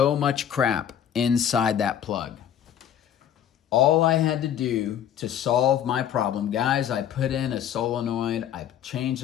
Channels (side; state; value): right; quieter; 9.7 dB